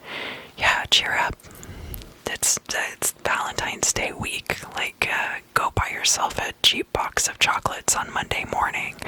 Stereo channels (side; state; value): both; identical; correlation 1.00